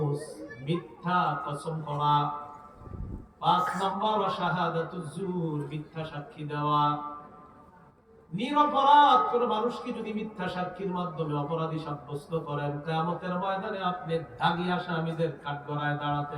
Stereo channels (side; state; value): both; identical; correlation 1.00